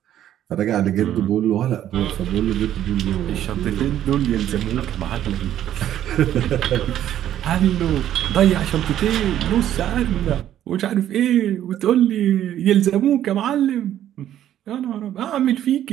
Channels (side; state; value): left; quieter; 11.5 dB